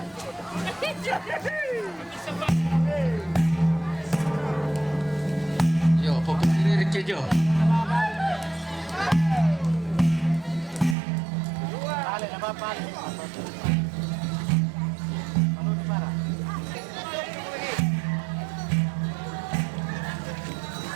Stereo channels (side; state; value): left; drops out; at 11.0 s